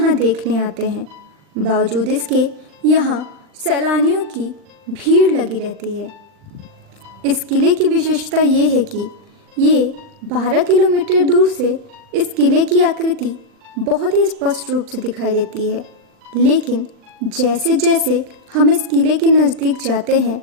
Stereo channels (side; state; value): left; late; 40 ms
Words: देखने आते हैं। बावजूद इसके यहाँ सैलानियों की भीड़ लगी रहती है। इस किले की विशेषता ये है कि ये 12 किलोमीटर दूर से इस किले की आकृति बहुत ही स्पष्ट रूप से दिखाई देती है, लेकिन जैसे जैसे हम इस किले के नज़दीक जाते हैं